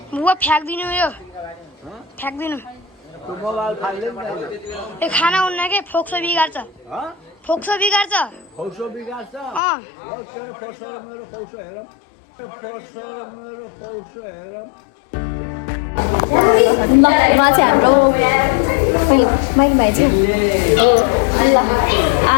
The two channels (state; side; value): drops out; right; at 9.6 s